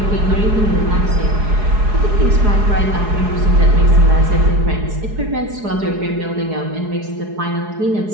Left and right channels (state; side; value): late; left; 4.7 ms